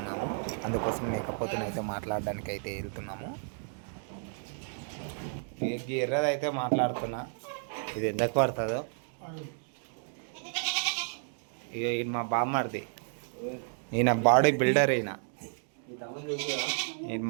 అందుకోసం మేకపోతుని అయితే మాట్లాడడానికి అయితే వెళ్తున్నాము. ఎర్రదైతే మాట్లాడుతున్నా, ఇది ఎందుకు పడుతుందో. ఇక ఈయన మా బామ్మర్ది, ఈయన బాడీ బిల్డర్. ఈయన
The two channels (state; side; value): silent; left; 56 dB below the other